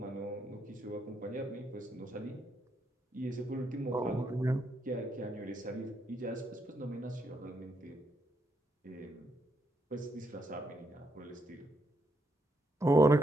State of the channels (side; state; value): both; normal; correlation 0.78